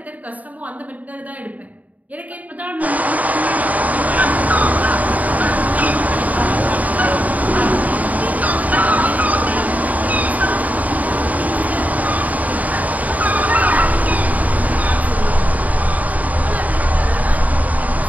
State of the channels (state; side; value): late; left; 0.073 ms